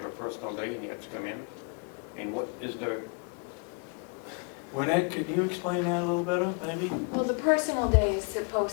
a personal day and you have to come in? And what is there? Wynette, could you explain that a little better, maybe? Well, the personal day is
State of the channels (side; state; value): right; quieter; 37.5 dB